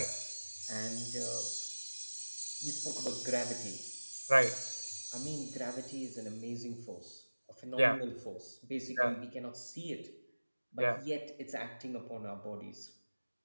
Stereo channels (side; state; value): both; inverted; correlation -1.00